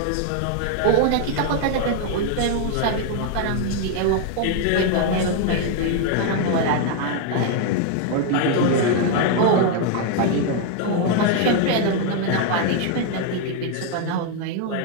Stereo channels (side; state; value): both; different; correlation 0.00